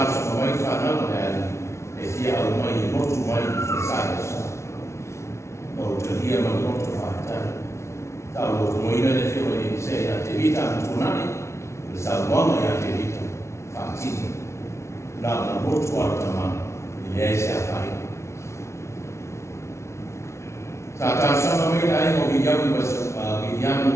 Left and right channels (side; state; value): right; late; 0.13 ms